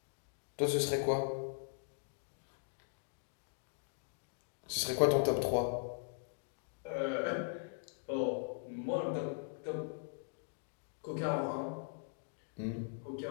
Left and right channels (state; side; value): silent; right; digital silence